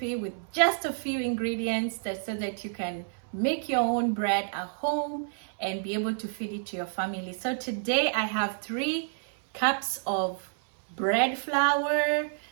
with just a few ingredients so that you can make your own bread at home and be able to feed it to your family. So today I have 3 cups of bread flour,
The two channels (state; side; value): silent; left; 59 dB below the other